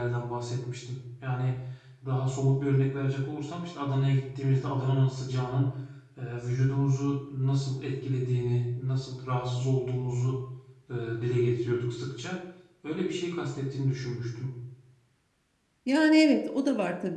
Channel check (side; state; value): both; identical; correlation 1.00